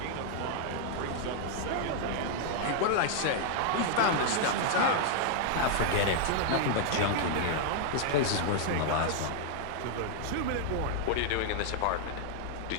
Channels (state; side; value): different; both; correlation 0.00